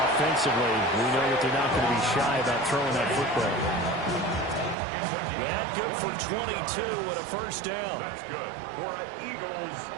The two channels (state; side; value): drops out; left; at 4.8 s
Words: we know that they're not going to be shy about throwing that football. That good for 22 and a first down. That's good for an Eagles